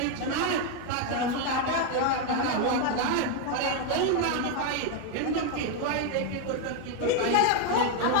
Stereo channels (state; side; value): different; both; correlation 0.01